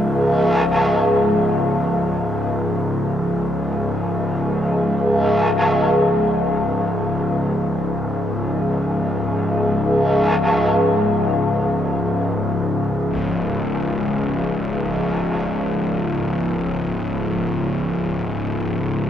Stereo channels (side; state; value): both; normal; correlation 0.77